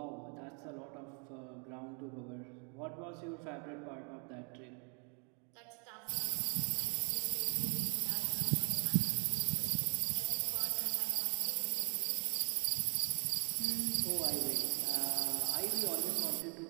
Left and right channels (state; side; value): quieter; left; 37.3 dB